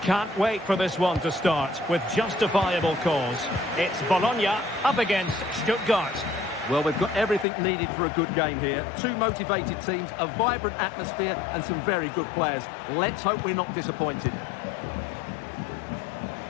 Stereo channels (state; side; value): drops out; right; at 7.5 s